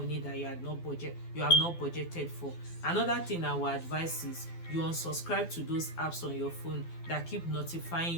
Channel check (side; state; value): right; late; 12 ms